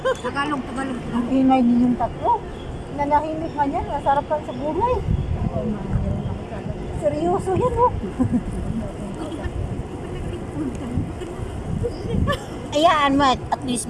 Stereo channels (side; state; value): both; identical; correlation 1.00